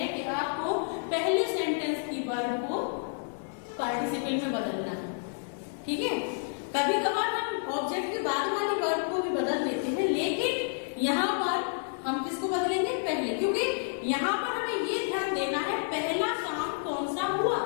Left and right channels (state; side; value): silent; right; digital silence